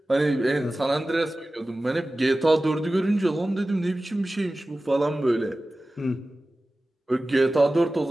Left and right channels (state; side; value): normal; both; correlation 0.96